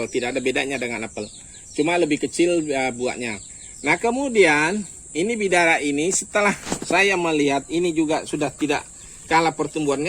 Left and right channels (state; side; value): identical; both; correlation 1.00